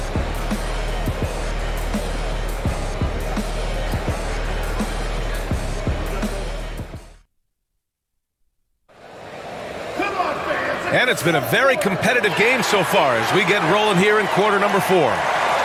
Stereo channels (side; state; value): both; identical; correlation 1.00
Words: And it's been a very competitive game so far as we get rolling here in quarter number 4.